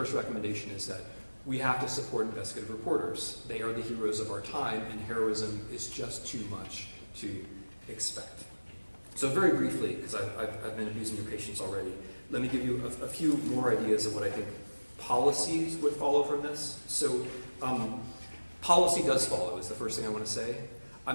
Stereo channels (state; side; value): inverted; both; correlation -1.00